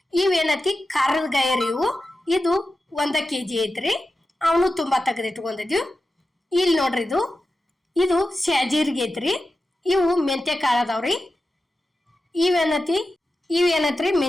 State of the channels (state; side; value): normal; both; correlation 0.92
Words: ಇವೇನೈತಿ ಖಾರದ ಗಾಯ ರೀ. ಇದು 1 kg ಐತ್ರಿ. ಅವನು ತುಂಬಾ ತಗದ್ ಇಟ್ಕೊಂಡದೀವು. ಇಲ್ಲಿ ನೋಡ್ರಿ, ಇದು ಸ್ಯಾಜೀರ್ಗೆ ಐತ್ರಿ. ಇವು ಮೆಂತೆ ಕಾಳು ಅದಾವ್ರಿ. ಇವೇನೈತ್ರಿ